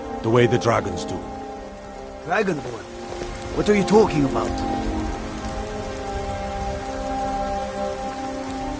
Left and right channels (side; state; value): both; identical; correlation 1.00